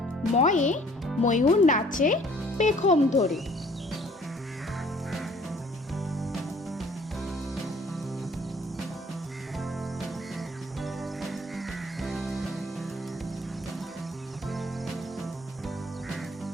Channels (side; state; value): both; normal; correlation 0.56